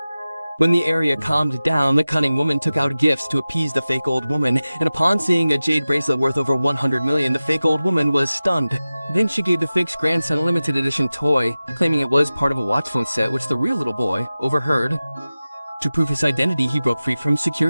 When the area calmed down, the cunning woman took out gifts to appease the fake old woman, and upon seeing a jade bracelet worth over 100 million, the fake old woman was stunned. Then she gave the fake's grandson a limited edition toy, claiming it was part of a watch phone set, which the real little boy overheard. To prove his identity, he broke free from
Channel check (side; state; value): both; inverted; correlation -0.96